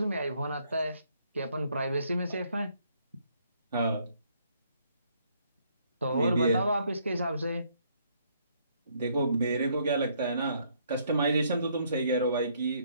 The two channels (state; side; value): inverted; both; correlation -0.68